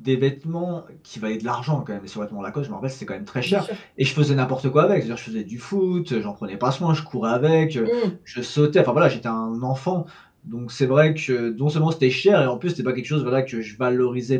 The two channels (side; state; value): both; identical; correlation 1.00